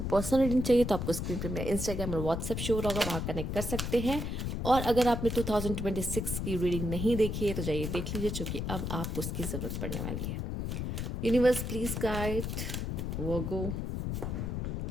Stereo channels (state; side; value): noise; left; rumble, 3 dB below the sound